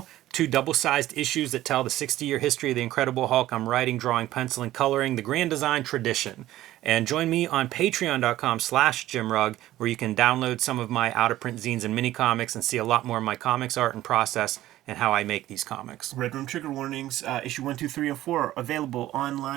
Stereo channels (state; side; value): quieter; left; 14.7 dB